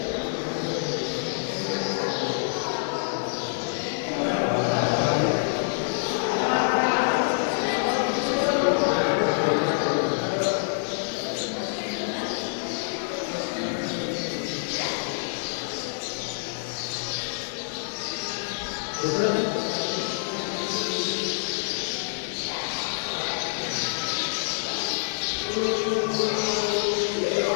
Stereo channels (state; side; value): silent; right; digital silence